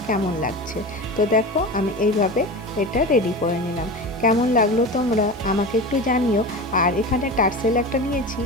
কেমন লাগছে। তো দেখো আমি এইভাবে এটা রেডি করে নিলাম। কেমন লাগলো তোমরা আমাকে একটু জানিও। আর এখানে টার্সেল একটা নিয়েছি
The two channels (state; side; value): noise; left; hiss, 29 dB below the sound